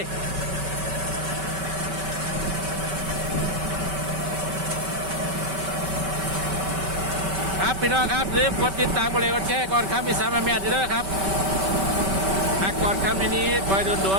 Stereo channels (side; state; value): left; late; 5.2 ms